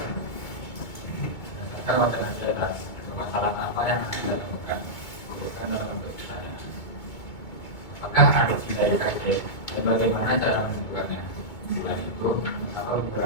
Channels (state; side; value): late; right; 2.2 ms